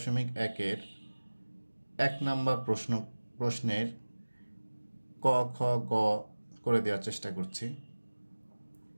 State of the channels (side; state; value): both; inverted; correlation -1.00